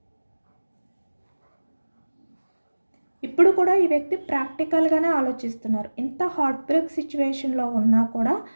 ఇప్పుడు కూడా ఈ వ్యక్తి ప్రాక్టికల్గానే ఆలోచిస్తున్నారు. ఇంత హార్ట్ బ్రేక్ సిచ్యువేషన్లో ఉన్నా కూడా,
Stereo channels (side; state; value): both; inverted; correlation -1.00